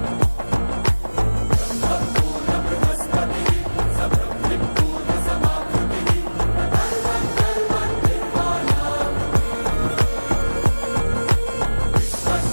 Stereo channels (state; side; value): inverted; both; correlation -1.00